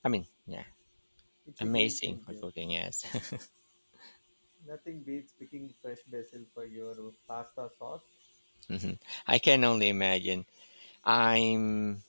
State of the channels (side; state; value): both; inverted; correlation -1.00